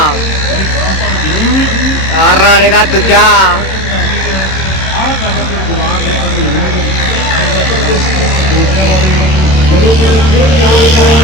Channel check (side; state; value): right; late; 27 ms